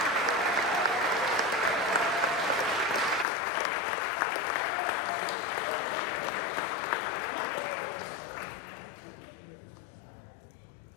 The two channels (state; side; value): drops out; right; at 3.2 s